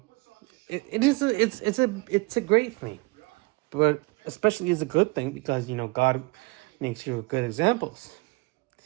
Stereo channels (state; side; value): quieter; left; 26.0 dB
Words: it's a great thing, but especially it's a good thing because God makes you good examples.